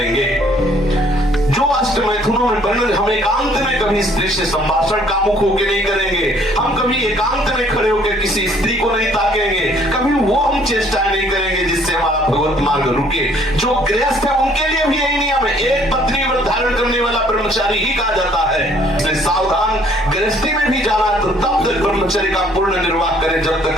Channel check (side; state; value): both; normal; correlation 0.60